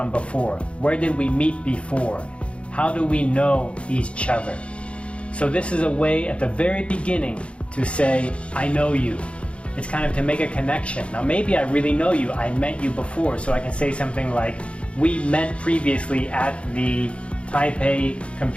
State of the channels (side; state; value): right; late; 0.060 ms